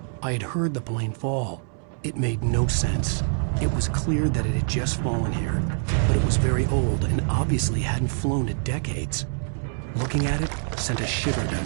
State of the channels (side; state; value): left; silent; 62 dB below the other